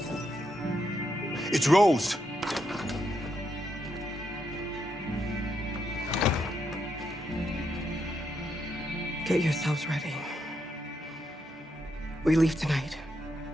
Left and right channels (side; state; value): both; normal; correlation 0.80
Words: It's Rose. Get yourselves ready. We leave tonight.